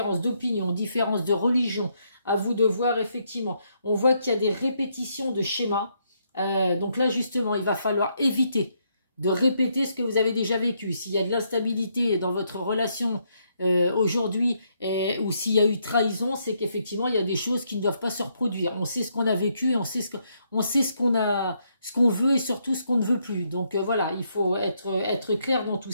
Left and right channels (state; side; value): inverted; both; correlation -0.75